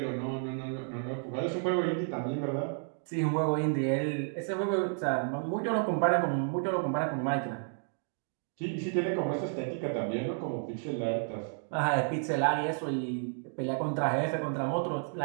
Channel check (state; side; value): silent; left; 57 dB below the other